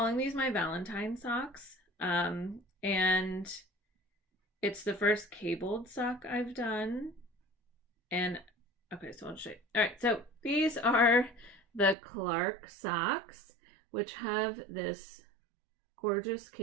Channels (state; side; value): drops out; left; at 12.0 s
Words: these my Valentine socks. And it's the first cabled sock I've done. And okay, so I'll show you. All right, so these are the Clark socks, which have this gorgeous